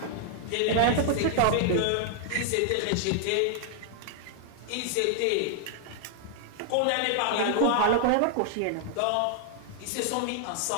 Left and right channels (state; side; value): different; both; correlation 0.00